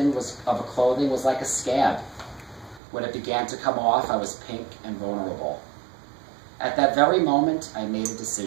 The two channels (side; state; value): left; drops out; at 2.8 s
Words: of clothing was like a scab. When it began to come off, I was pink and vulnerable. At that very moment, I made a